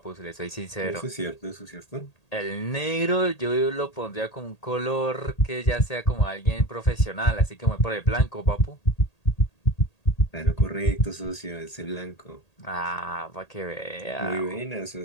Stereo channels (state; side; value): late; right; 1.8 ms